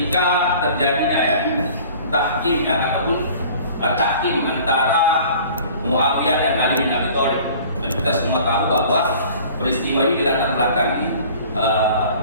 terjadinya ya tahkim ataupun tahkim antara Muawiyah dan Ali bin Abi Thalib. Dan kita semua tahu bahwa peristiwa ini dilatar belakangi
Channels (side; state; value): both; inverted; correlation -0.47